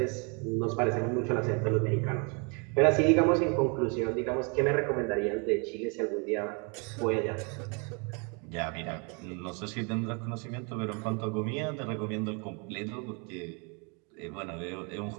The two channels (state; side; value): quieter; left; 34.2 dB